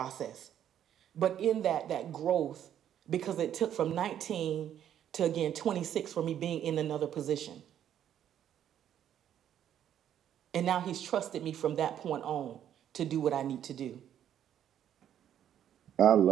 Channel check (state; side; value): quieter; left; 10.2 dB